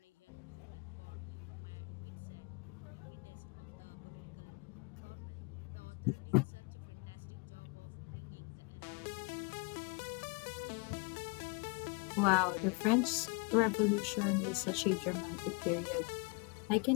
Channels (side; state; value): right; quieter; 32.6 dB